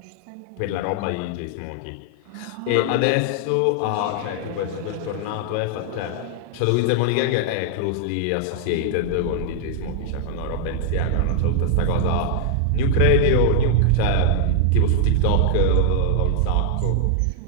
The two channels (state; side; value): different; both; correlation 0.00